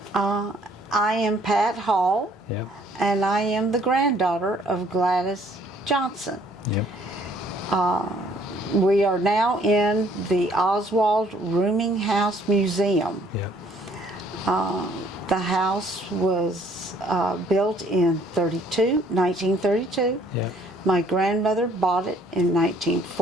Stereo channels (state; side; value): normal; both; correlation 0.61